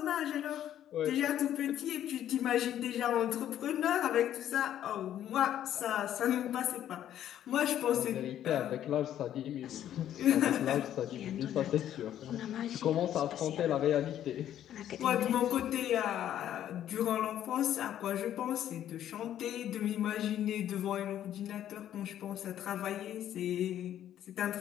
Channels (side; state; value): right; quieter; 11.2 dB